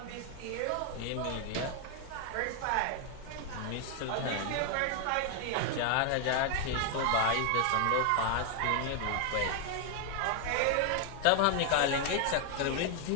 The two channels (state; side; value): different; both; correlation 0.00